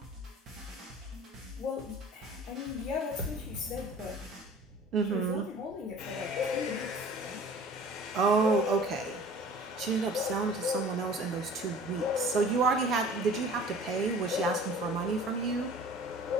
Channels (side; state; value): both; normal; correlation 0.45